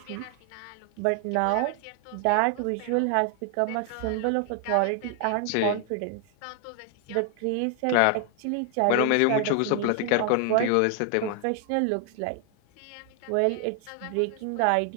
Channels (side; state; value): both; different; correlation 0.00